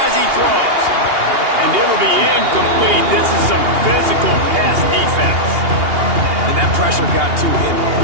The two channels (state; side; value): late; left; 2.8 ms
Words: as he throws. And it'll be incomplete. This is some physical pass defense. And that pressure got to him